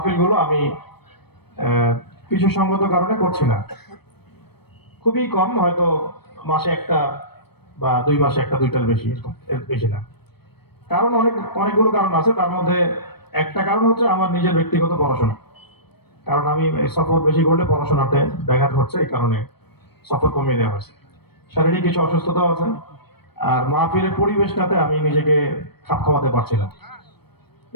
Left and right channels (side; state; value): right; late; 0.97 ms